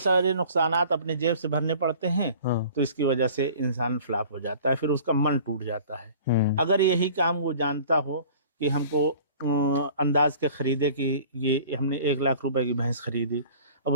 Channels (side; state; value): both; inverted; correlation -0.47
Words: नुकसानात अपने जेब से भरने पड़ते हैं। तो इसकी वजह से इंसान फ्लॉप हो जाता है, फिर उसका मन टूट जाता है। अगर यही काम वो जानता हो कि हमको अंदाज के खरीदे कि ये हमने 1 लाख रुपए की भैंस खरीदी, अब